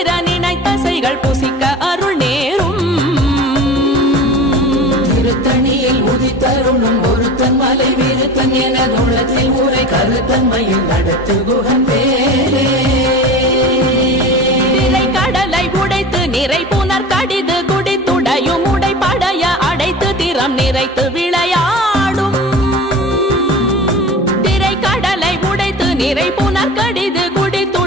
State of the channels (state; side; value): normal; both; correlation 0.35